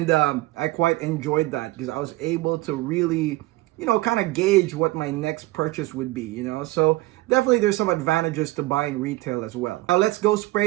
I quite enjoyed that because I was able to really, you know, kind of gauge what my next purchase would be, you know? So definitely there's some advantages to buying retail as well. Now let's go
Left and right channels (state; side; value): quieter; left; 19.2 dB